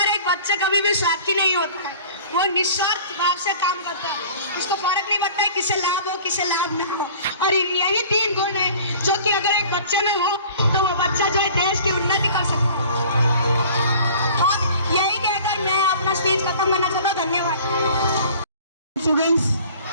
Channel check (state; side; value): inverted; both; correlation -0.46